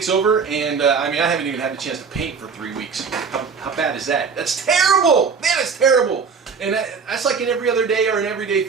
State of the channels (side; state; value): left; quieter; 5.7 dB